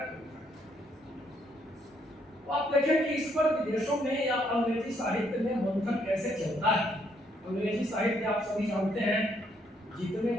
कविता। तो आप देखें कि इस पर विदेशों में या अंग्रेजी साहित्य में मंथन कैसे चलता है। अंग्रेजी साहित्य आप सभी जानते हैं, जितने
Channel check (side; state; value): both; normal; correlation 0.71